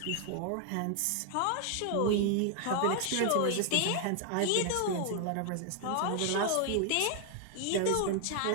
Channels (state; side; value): different; both; correlation 0.00